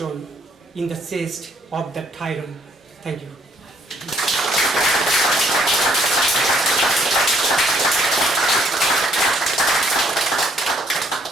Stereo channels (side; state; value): both; normal; correlation 0.66